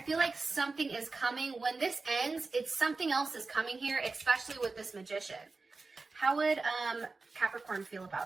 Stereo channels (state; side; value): quieter; left; 3.9 dB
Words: feel like something is coming. When this ends, it's something else is coming here, especially with this Magician. How would Capricorn feel